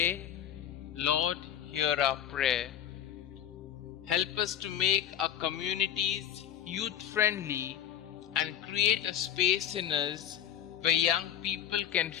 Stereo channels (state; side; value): quieter; right; 10.2 dB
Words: Lord, hear our prayer. Help us to make our communities youth-friendly and create a space in us where young people can